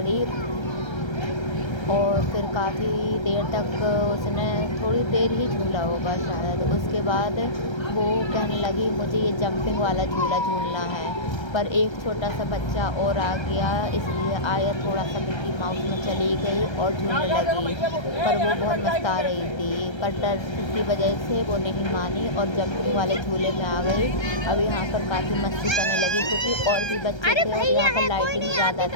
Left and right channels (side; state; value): right; late; 1.3 ms